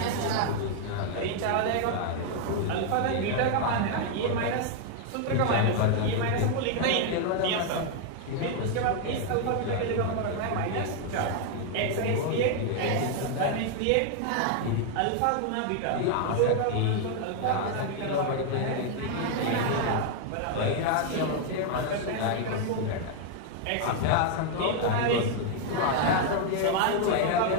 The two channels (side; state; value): both; different; correlation 0.00